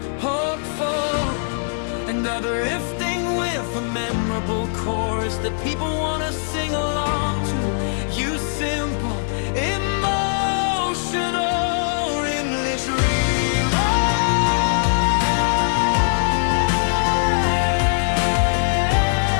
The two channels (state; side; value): silent; right; digital silence